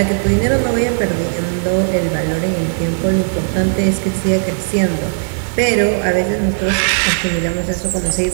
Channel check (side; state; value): left; silent; 65 dB below the other